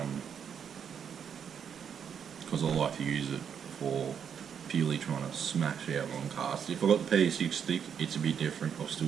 because I like to use it for purely trying to smash out long casts. If I've got the PE6 stick, it's a bit different. I'll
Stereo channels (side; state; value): left; quieter; 7.7 dB